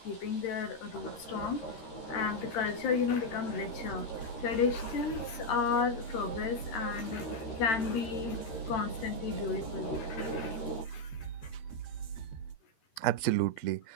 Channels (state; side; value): late; right; 13 ms